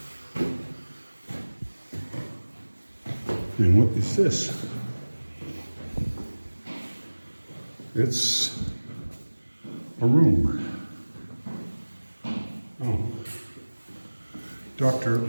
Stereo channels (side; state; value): both; inverted; correlation -1.00